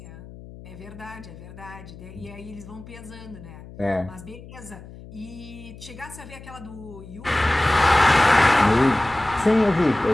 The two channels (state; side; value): noise; left; hum, 17 dB below the sound